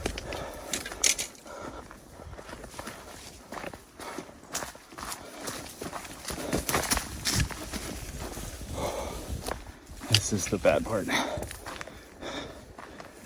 This is the bad part.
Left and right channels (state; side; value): identical; both; correlation 1.00